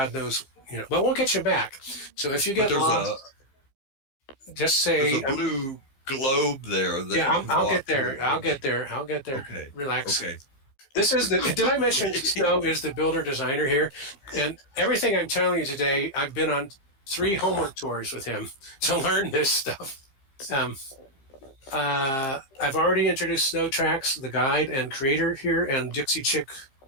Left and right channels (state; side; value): late; right; 15 ms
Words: knows, but we'll get you back. So if you get lost, just say there's a blue globe there. I'll get there. I'll get there. Okay. Relax. Okay. This is did I mention Snow is the builder designer here? And everything I'm telling you today, I've been on 3 homework tours with him to learn this stuff. I've already introduced Snow Tracks, the guide and creator here, and Dixie Chick,